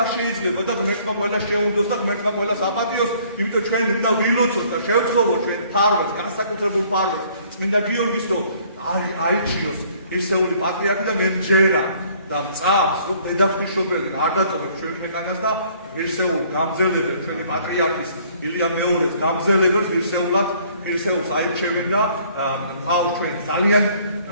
შეიძლება და ღმერთმა ყველას შეუნდოს და ღმერთმა ყველას აპატიოს, იმიტომ ჩვენ უნდა ვილოცოთ და შევთხოვოთ ჩვენ ფარვას, განსაკუთრებულ ფარვას, წმინდა გიორგის რომ აიჩიოს ერთეული პატრიარქი და მერჯერა და მწამს რომ დედაფშობელი არ დატოვებს ჩვენ ქვეყანას და ერთეულ გამძელებელ ჩვენი პატრიარქის ილია მეორეს გამძელებელს ერთეულს აირჩევენ და ყავს ჩვენ ძალიან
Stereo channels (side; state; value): both; inverted; correlation -0.59